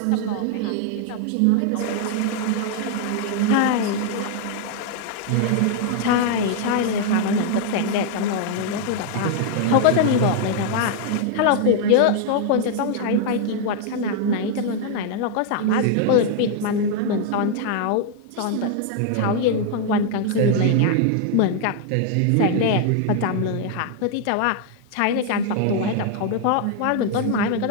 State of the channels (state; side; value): different; both; correlation 0.00